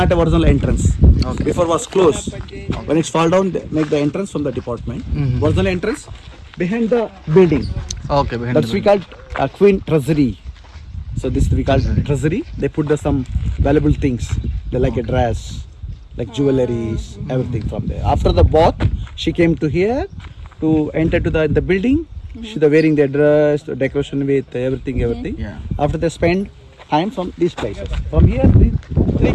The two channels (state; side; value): identical; both; correlation 1.00